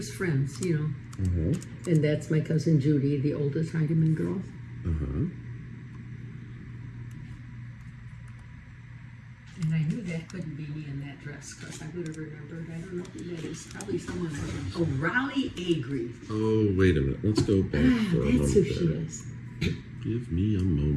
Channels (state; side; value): identical; both; correlation 1.00